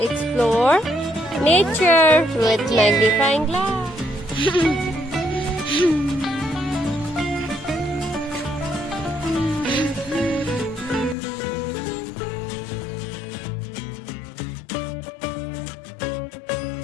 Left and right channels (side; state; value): right; drops out; at 11.2 s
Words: explore nature with magnifying glass.